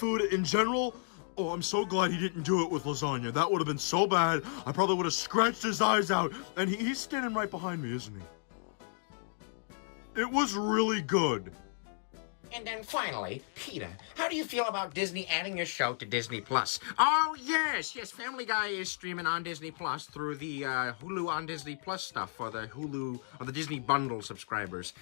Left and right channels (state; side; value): silent; right; 56 dB below the other